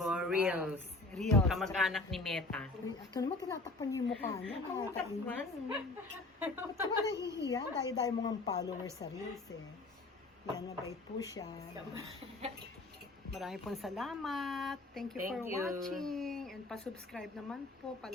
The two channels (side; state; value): right; quieter; 3.1 dB